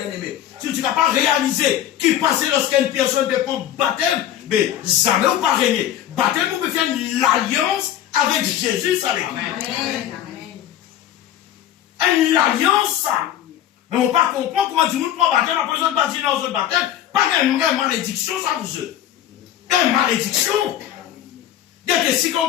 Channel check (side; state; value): right; quieter; 11.4 dB